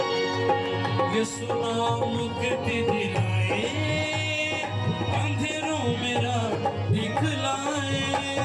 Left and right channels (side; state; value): both; identical; correlation 1.00